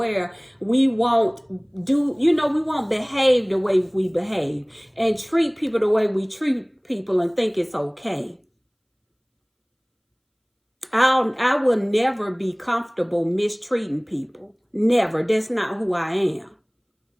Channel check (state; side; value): identical; both; correlation 1.00